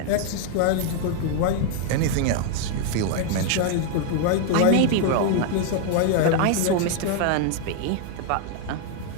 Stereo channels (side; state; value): both; different; correlation 0.00